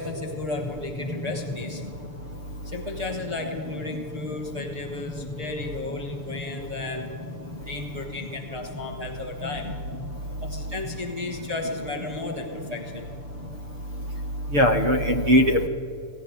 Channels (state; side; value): late; left; 6.7 ms